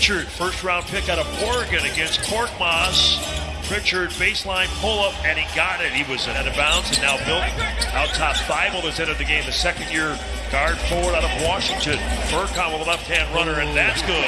first round pick out of Oregon against Korkmaz. Pritchard baseline pull up, and he got it. He was out of bounds, and now Bill out top. Thibault has entered the game, the second year guard forward out of Washington. Furcon with a left-hand runner, and that's good.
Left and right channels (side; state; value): both; identical; correlation 1.00